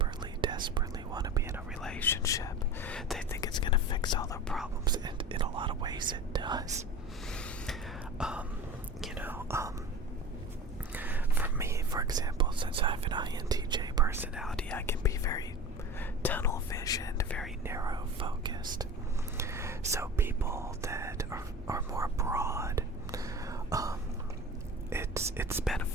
want to be in a relationship. They think it's going to fix all their problems, and in a lot of ways it does. For me, for example, since I have an INTJ personality, I can be very tunnel visioned, very narrow focused. So people that are more broad, it's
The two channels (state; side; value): normal; both; correlation 0.34